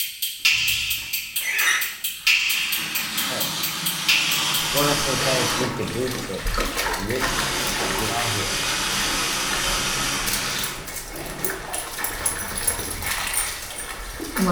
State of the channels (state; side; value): identical; both; correlation 1.00